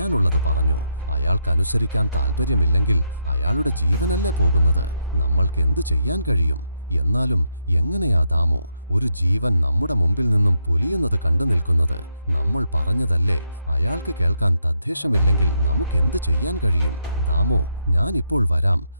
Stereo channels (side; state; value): both; inverted; correlation -0.80